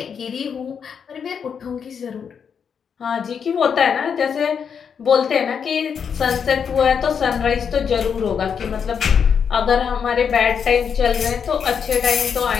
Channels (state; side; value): quieter; right; 7.0 dB